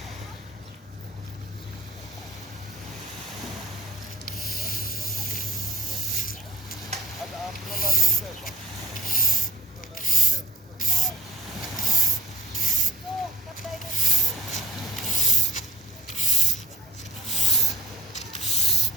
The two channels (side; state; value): both; normal; correlation 0.47